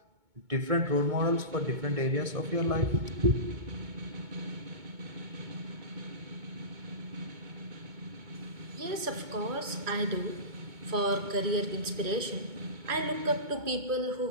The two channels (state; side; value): late; left; 2.2 ms